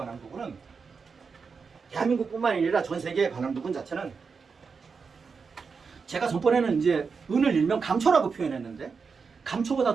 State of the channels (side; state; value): left; quieter; 5.3 dB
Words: 부분은 대한민국뿐만 아니라 전 세계에 관한 부분 자체는 제가 전번에는 이제 은을 일명 감초라고 표현했는데 감초보다